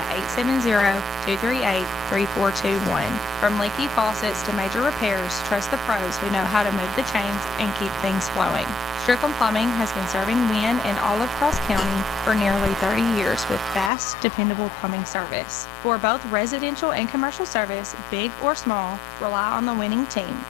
870-238-3421. From leaky faucets to major repairs, trust the pros who know how to move the chains and keep things flowing. Strickland Plumbing has been serving Wynne and all of Cross County for nearly 30 years with fast, dependable plumbing service. For both residential and commercial service, big or small, rely on the winning team,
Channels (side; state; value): right; drops out; at 13.9 s